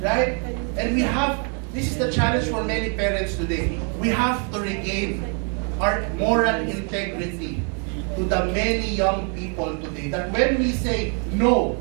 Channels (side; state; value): left; quieter; 39.8 dB